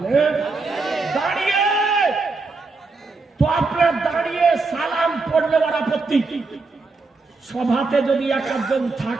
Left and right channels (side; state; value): left; quieter; 3.9 dB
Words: দাঁড়িয়ে। তো আপনার দাঁড়িয়ে সালাম পড়লে ওর আপত্তি। সভাতে যদি একজন